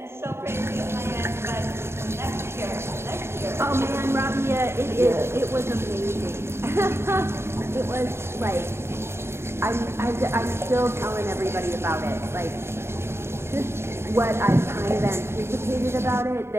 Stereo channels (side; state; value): left; late; 0.12 ms